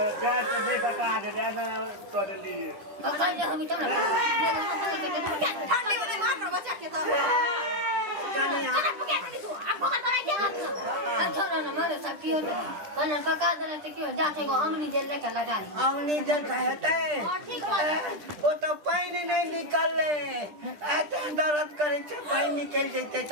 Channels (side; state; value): left; late; 10 ms